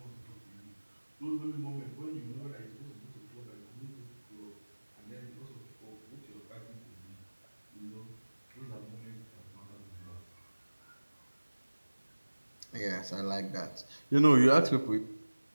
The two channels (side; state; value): both; inverted; correlation -1.00